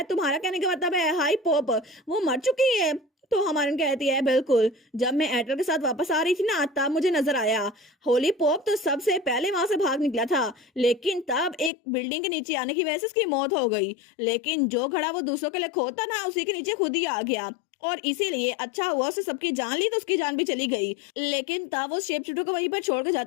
तुम्हारा कहने का मतलब है हाई पॉप वो मर चुकी है? तो हमारन कहती है बिल्कुल, जब मैं एडर के साथ वापस आ रही थी ना तब मुझे नजर आया। होली पॉप तो सबसे पहले वहां से भाग निकला था, लेकिन तब एक बिल्डिंग के नीचे आने की वजह से उसकी मौत हो गई। लेकिन जो घड़ा वो दूसरों के लिए खोता ना उसी के नीचे खुद ही आ गया और इसीलिए अच्छा हुआ उसने सबकी जान ली तो उसकी जान भी चली गई। लेकिन तब वो शेप शिफ्टर को वहीं पर छोड़कर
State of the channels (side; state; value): right; drops out; at 11.7 s